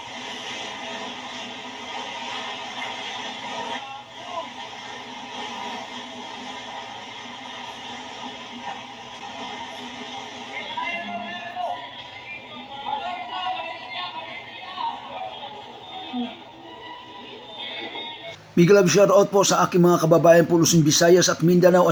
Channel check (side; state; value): both; identical; correlation 1.00